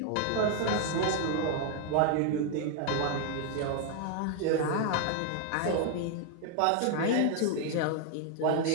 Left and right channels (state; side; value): different; both; correlation 0.00